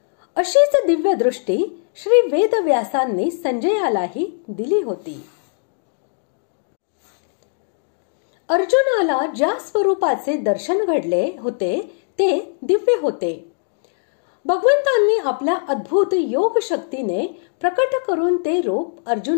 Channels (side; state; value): right; silent; digital silence